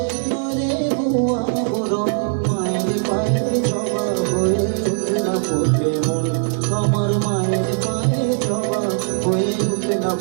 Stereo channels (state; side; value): silent; left; digital silence